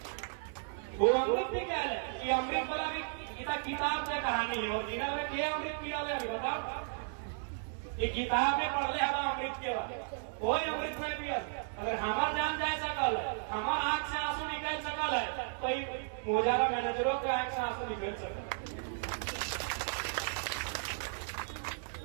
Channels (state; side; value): silent; left; 55 dB below the other